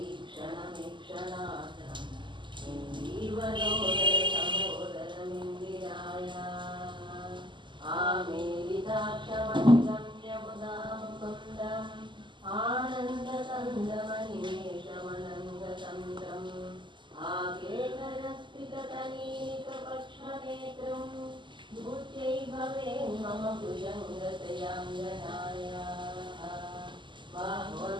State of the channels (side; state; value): left; late; 0.23 ms